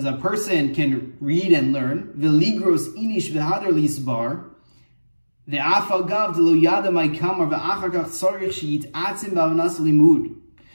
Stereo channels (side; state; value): both; inverted; correlation -1.00